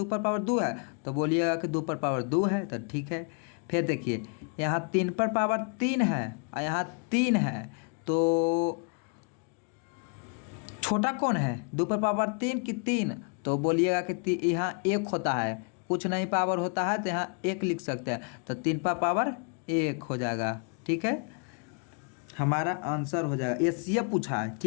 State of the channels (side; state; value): right; quieter; 39.3 dB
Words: पर पावर 2 है, तो बोलिएगा कि 2 पर पावर 2 है, तो ठीक है। फिर देखिए यहाँ 3 पर पावर 3 है और यहाँ 3 है, तो छोटा कौन है, 2 पर पावर 3 कि 3, तो बोलिएगा कि यहाँ 1 होता है, कुछ नहीं पावर होता है तो यहाँ 1 लिख सकते हैं, तो 3 पर पावर 1 हो जाएगा। ठीक है, हमारा आंसर हो जाएगा। एचसीएफ पूछा है,